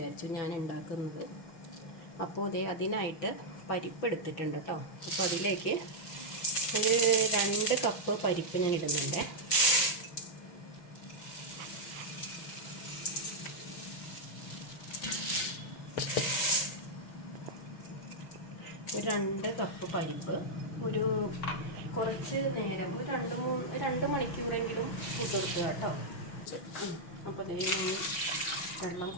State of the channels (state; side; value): late; right; 6.2 ms